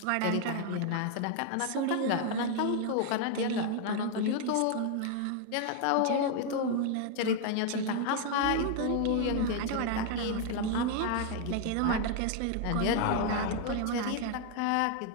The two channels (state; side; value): different; both; correlation 0.00